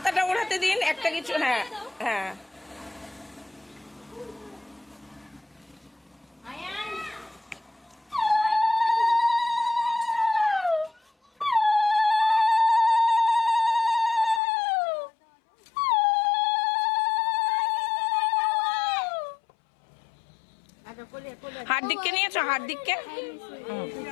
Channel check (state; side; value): drops out; right; at 14.4 s